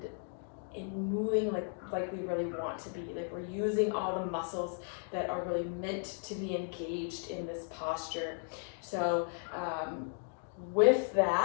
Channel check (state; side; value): silent; right; 54 dB below the other